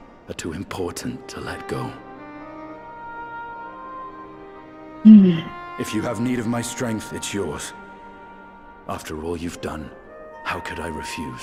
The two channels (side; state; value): both; identical; correlation 1.00